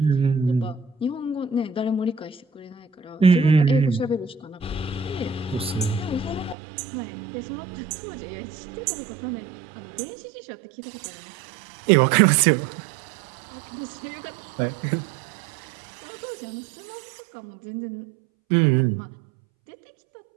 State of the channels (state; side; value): drops out; left; at 6.6 s